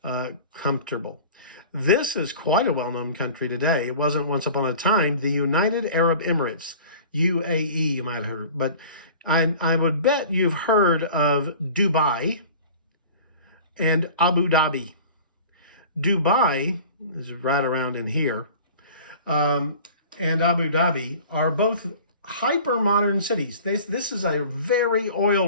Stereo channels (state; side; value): inverted; both; correlation -0.42